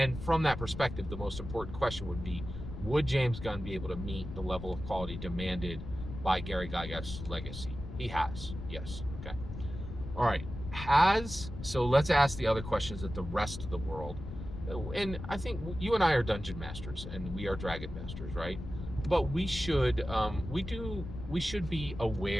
from that perspective, the most important question would be, would James Gunn be able to meet the level of quality demanded by Gary Gygax's legacy? He has, yes. Okay. All right. So let's ask the other questions that the rest of the world and I think you and I are dungeon masters and we are dragon masters, right? But we should we should be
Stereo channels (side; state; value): left; noise; rumble, 9 dB below the sound